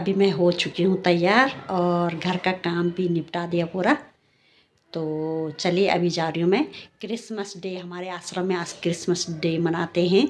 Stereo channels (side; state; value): both; identical; correlation 1.00